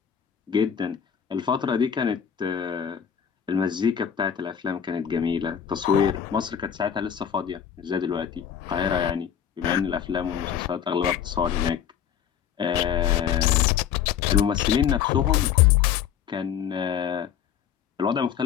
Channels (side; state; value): right; quieter; 8.7 dB